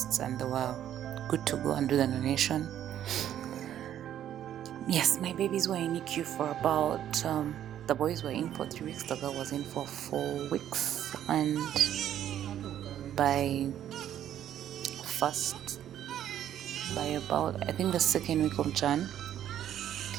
and they were good to go and do the donation. Yes, my babies were in NICU for about, the boys were in for 3 weeks, the girl was in for 4 weeks. And by about, I think the 2nd week of Jan,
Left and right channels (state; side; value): quieter; left; 10.9 dB